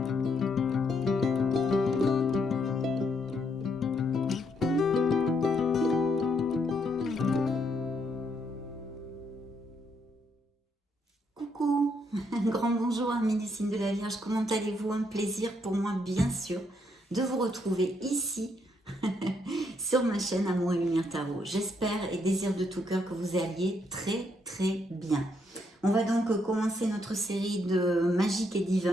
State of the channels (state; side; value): normal; both; correlation 0.74